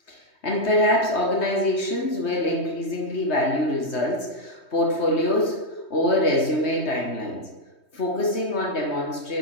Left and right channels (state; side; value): late; right; 3.2 ms